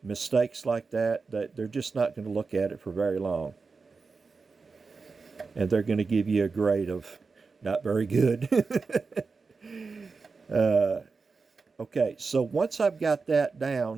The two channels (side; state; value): left; quieter; 4.5 dB